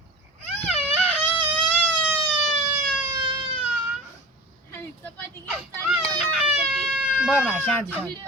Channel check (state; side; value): normal; both; correlation 0.35